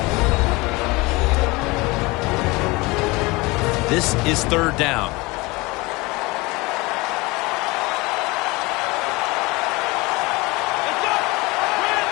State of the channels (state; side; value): quieter; right; 23.6 dB